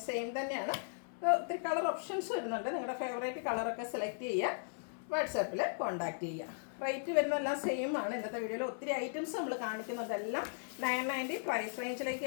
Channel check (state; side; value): silent; right; 53 dB below the other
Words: സെയിം തന്നെയാണ്. ഒത്തിരി കളർ ഓപ്ഷൻസ് വരുന്നുണ്ട്. നിങ്ങളുടെ ഫേവറേറ്റ് കളറൊക്കെ സെലക്ട് ചെയ്യുക, വാട്സാപ്പിൽ കോൺടാക്ട് ചെയ്യുക. റേറ്റ് വരുന്നതെല്ലാം സെയിം ആണ്. ഇന്നത്തെ വീഡിയോയിൽ ഒത്തിരി ഐറ്റംസ് നമ്മൾ കാണിക്കുന്നതെല്ലാം 990 പ്രൈസ് റേഞ്ചിലേക്ക്